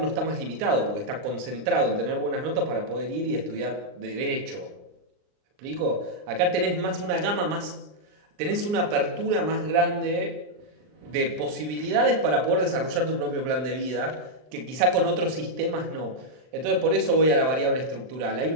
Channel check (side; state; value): left; late; 39 ms